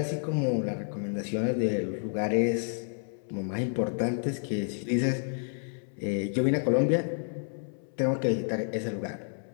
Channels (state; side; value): silent; right; 58 dB below the other